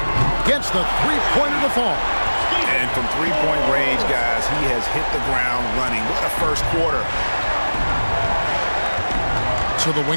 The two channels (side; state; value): both; inverted; correlation -1.00